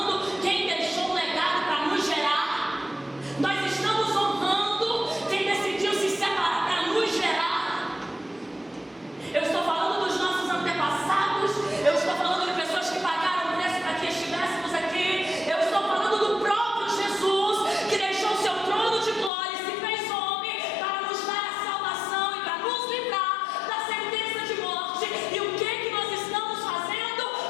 quem deixou um legado para nos gerar? Nós estamos honrando quem decidiu se separar para nos gerar? Eu estou falando dos nossos antepassados. Eu estou falando de pessoas que pagaram o preço para que estivéssemos aqui. Eu estou falando do próprio Jesus, que deixou o seu trono de glória e se fez homem para nos dar a salvação e para nos livrar da sentença de morte. E o que nós estamos fazendo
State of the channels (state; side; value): drops out; right; at 19.3 s